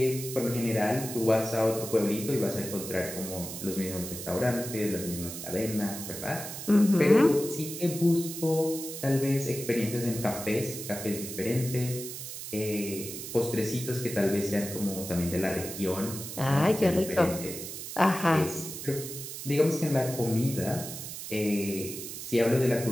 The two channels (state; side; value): noise; right; hiss, 9 dB below the sound